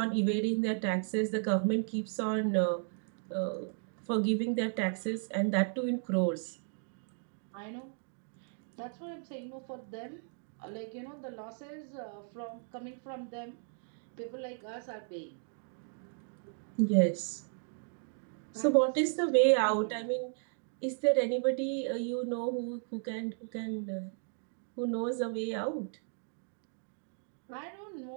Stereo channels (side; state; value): left; silent; 54 dB below the other